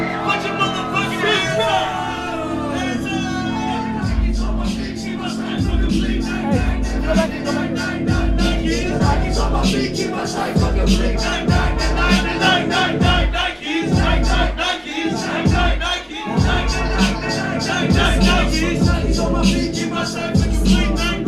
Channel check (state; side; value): identical; both; correlation 1.00